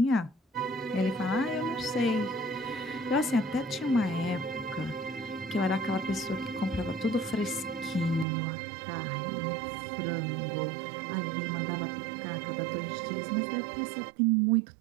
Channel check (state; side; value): drops out; left; at 8.2 s